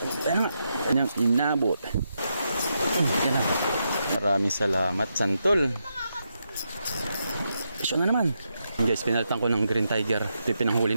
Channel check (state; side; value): inverted; both; correlation -0.83